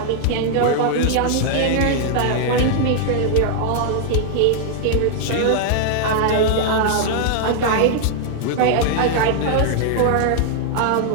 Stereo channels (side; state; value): both; different; correlation -0.01